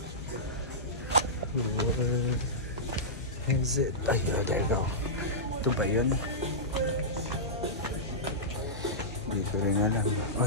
where is it? Ay, there you go. Ito ba yun? Hindi ko rin alam.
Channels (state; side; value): normal; both; correlation -0.14